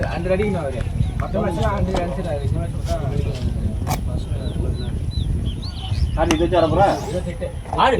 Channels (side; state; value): both; identical; correlation 1.00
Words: அடிக்கு நான் வரேன். மத்த மேட்ச்ல 100 அடிச்சாரு. இந்த மேட்ச் ஆடி இது வர போறா ஆடு.